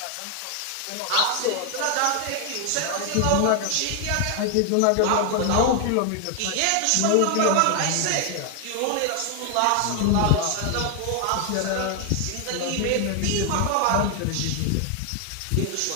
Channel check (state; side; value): different; both; correlation 0.00